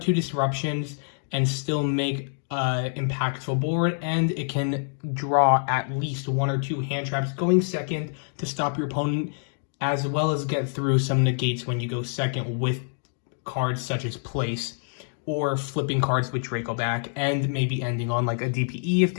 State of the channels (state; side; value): silent; right; digital silence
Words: disruptions and still make impactful board, and it can draw at least one or two hand traps going second to stop your opponent, as well as get through some negates when you go second with cards such as place or flipping cards with Draco back, and maybe ending on like a DPE if